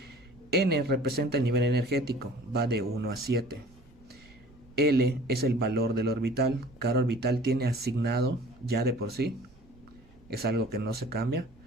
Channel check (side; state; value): right; noise; rumble, 26 dB below the sound